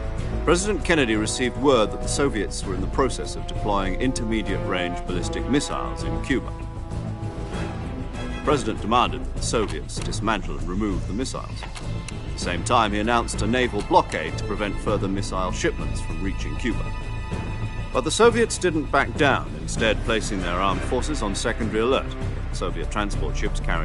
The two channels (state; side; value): identical; both; correlation 1.00